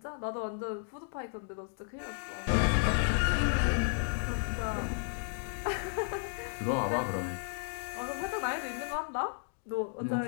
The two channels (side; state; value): right; silent; digital silence